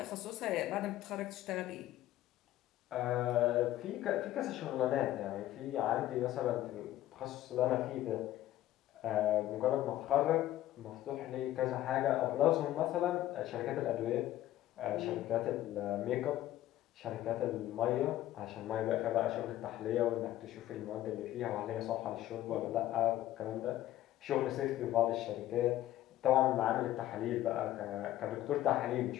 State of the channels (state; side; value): quieter; right; 14.0 dB